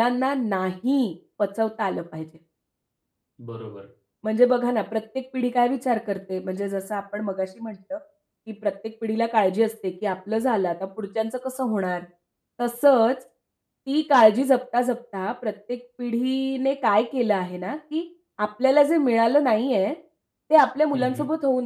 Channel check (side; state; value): both; identical; correlation 1.00